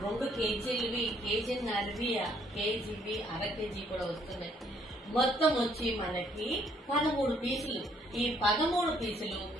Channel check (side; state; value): both; normal; correlation 0.66